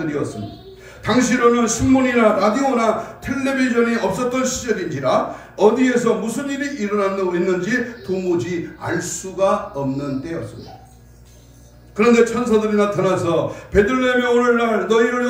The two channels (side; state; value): both; identical; correlation 1.00